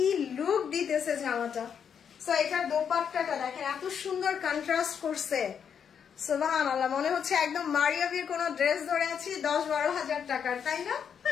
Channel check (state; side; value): quieter; right; 7.6 dB